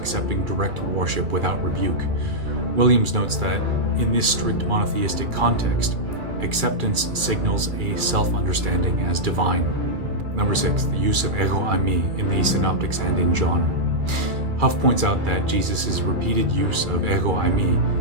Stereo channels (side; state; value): left; late; 2.3 ms